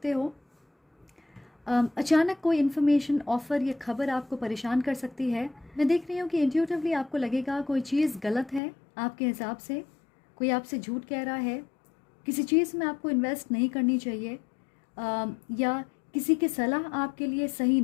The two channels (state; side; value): drops out; right; at 8.6 s